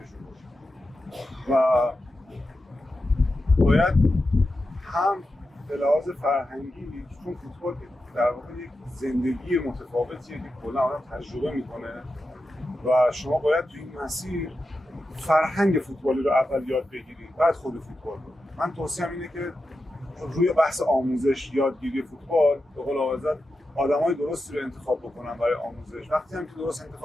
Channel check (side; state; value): both; normal; correlation 0.90